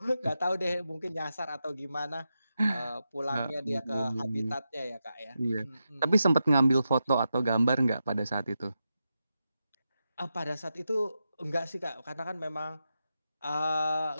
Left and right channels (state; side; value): inverted; both; correlation -0.88